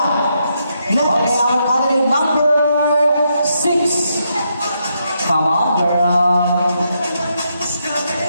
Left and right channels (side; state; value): both; inverted; correlation -0.79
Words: Okay, Next. our candidate number 6. Come on, girl.